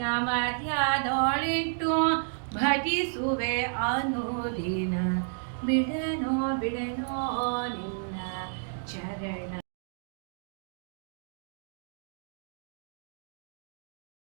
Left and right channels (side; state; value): left; silent; digital silence